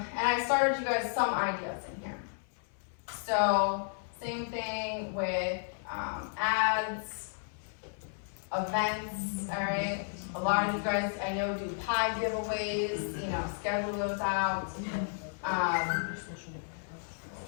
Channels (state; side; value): silent; right; 56 dB below the other